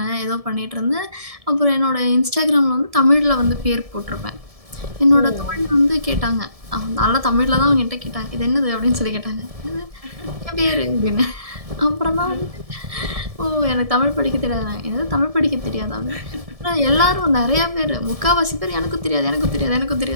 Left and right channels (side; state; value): left; late; 1.7 ms